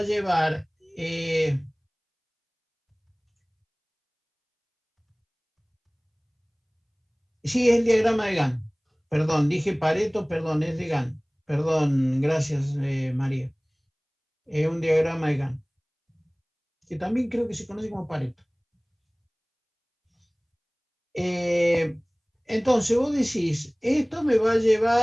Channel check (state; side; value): identical; both; correlation 1.00